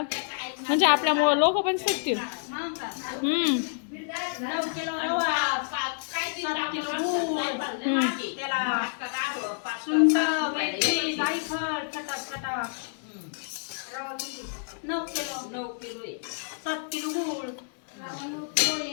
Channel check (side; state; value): right; silent; digital silence